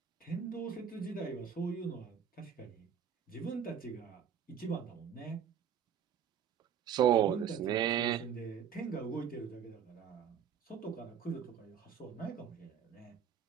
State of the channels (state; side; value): quieter; left; 8.2 dB